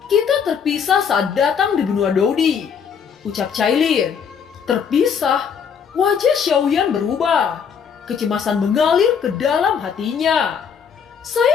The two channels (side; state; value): right; quieter; 7.0 dB